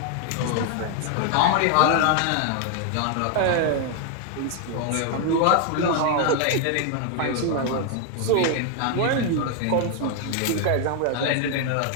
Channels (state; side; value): different; both; correlation 0.00